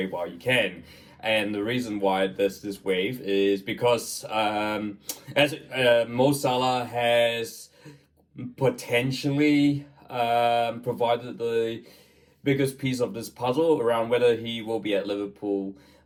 while you can. And the reason why there's this wave is because Mo Salah has potentially provided the biggest piece of this puzzle around whether he will be at Liverpool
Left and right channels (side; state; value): both; identical; correlation 1.00